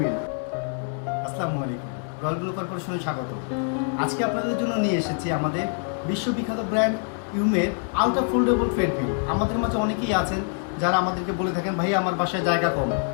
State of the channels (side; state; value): right; silent; 55 dB below the other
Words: আসসালামু আলাইকুম, রয়্যাল ব্লু কর্পোরেশনে স্বাগত। আজকে আপনাদের জন্য নিয়ে এসেছি আমাদের বিশ্ববিখ্যাত ব্র্যান্ড ইউমের আলট্রা ফোল্ডেবল ট্রেডমিল। আমাদের মাঝে অনেকেই আছেন যারা আমাদেরকে বলে থাকেন, ভাইয়া আমার বাসায় জায়গা কম,